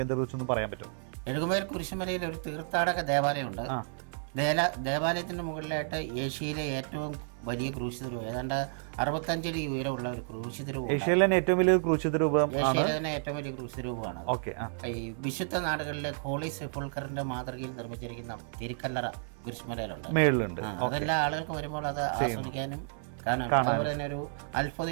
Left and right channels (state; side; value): silent; left; 57 dB below the other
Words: കേന്ദ്രത്തെക്കുറിച്ചൊന്ന് പറയാൻ പറ്റും? എഴുകുമല കുരിശുമലയിൽ ഒരു തീർത്ഥാടക ദേവാലയമുണ്ട്. ദേവാലയത്തിന്റെ മുകളിലായിട്ട് ഏഷ്യയിലെ ഏറ്റവും വലിയ ക്രൂശിതരൂപം, ഏതാണ്ട് 65 അടി ഉയരമുള്ള ഒരു ക്രൂശിതരൂപം. ഏഷ്യയിലെ തന്നെ ഏറ്റവും വലിയ ക്രൂശിതരൂപമാണ്. ഈ വിശുദ്ധ നാടുകളിലെ ഹോളി സെപ്പുൾക്കറിന്റെ മാതൃകയിൽ നിർമ്മിച്ചിരിക്കുന്ന തിരുക്കല്ലറ കുരിശുമലയിലുണ്ട്. അതെല്ലാ ആളുകൾക്ക് വരുമ്പോൾ അത് ആസ്വദിക്കാനും കാണാനും. അതുപോലെ തന്നെ ഒരു